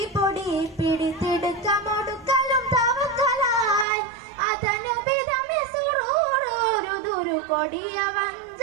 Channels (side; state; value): left; drops out; at 3.9 s